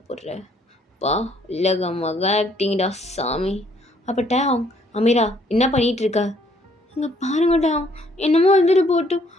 போடுற பா, இல்லைங்க மக ஆக்டிங்டா சாமி. அப்போ டேவ், அமீரா என்ன பண்ணிகிட்டு இருக்க? இங்கே பாருங்க டேவ், என்னமோ வந்துட்டு போட்டும்,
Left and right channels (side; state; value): both; normal; correlation 0.65